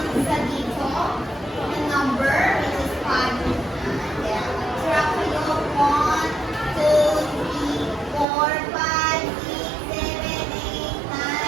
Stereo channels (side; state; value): left; drops out; at 8.2 s